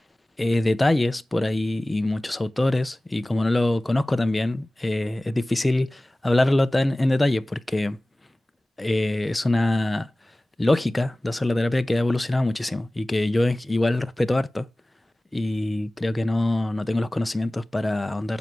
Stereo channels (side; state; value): both; normal; correlation 0.98